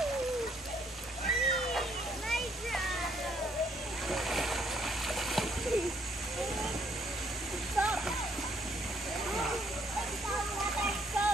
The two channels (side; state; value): both; normal; correlation 0.68